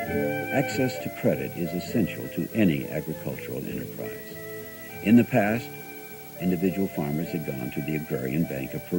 Access to credit is essential to any agricultural enterprise. In the past, individual farmers had gone to the Agrarian Bank of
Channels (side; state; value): both; identical; correlation 1.00